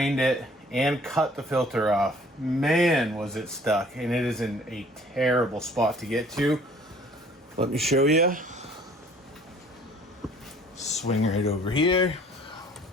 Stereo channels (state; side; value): normal; both; correlation 0.54